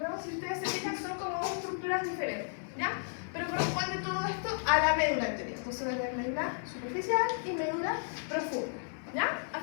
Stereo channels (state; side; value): silent; right; digital silence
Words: Si ustedes se fijan, son como dos estructuras diferentes, ¿ya? Pero corresponde todo esto a la médula anterior. Entonces voy a tener médula superficial y médula profunda, ¿ya?